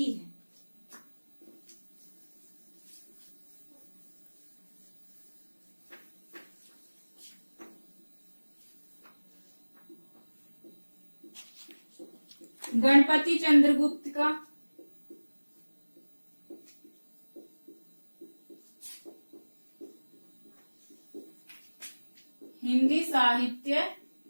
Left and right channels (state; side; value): inverted; both; correlation -1.00